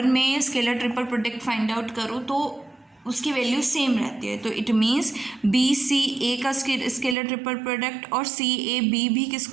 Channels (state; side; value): drops out; left; at 7.2 s